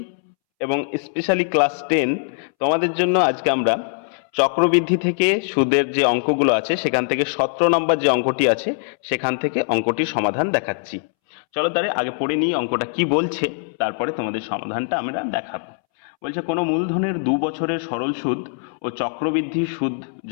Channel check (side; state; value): right; silent; 65 dB below the other